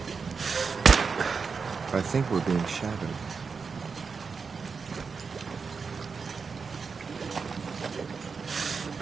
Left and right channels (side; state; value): left; quieter; 5.2 dB